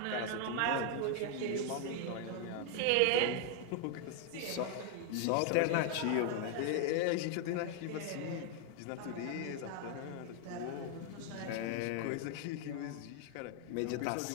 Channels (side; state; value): both; different; correlation 0.00